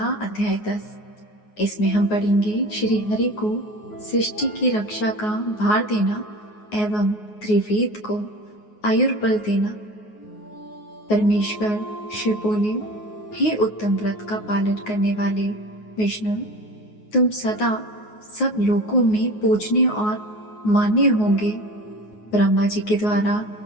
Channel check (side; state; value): right; late; 9.5 ms